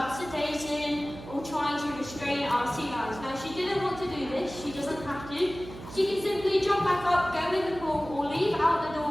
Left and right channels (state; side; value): noise; right; hum, 14 dB below the sound